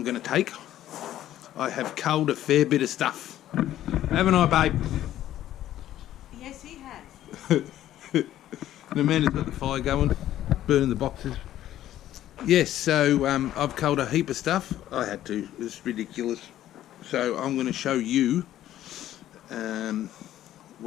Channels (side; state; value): right; quieter; 12.8 dB